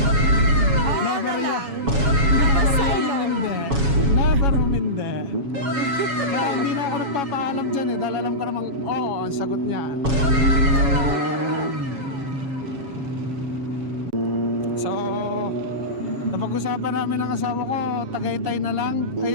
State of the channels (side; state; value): left; late; 7.1 ms